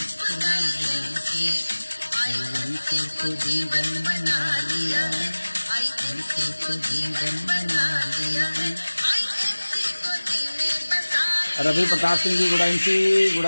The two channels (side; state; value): both; inverted; correlation -1.00